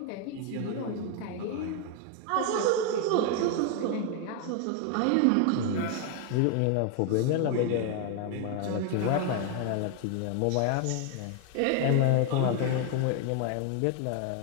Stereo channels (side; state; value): both; different; correlation 0.01